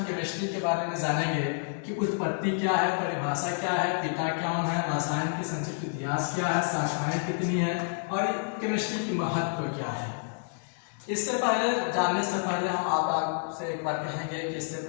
केमिस्ट्री के बारे में जानेंगे कि उत्पत्ति क्या है, परिभाषा क्या है, पिता कौन है, रसायन की संक्षिप्त इतिहास क्या है, शाखाएं कितनी है और केमिस्ट्री की महत्व क्या है। इससे पहले जानने से पहले हम आपसे एक बार कहेंगे कि इससे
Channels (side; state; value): right; silent; digital silence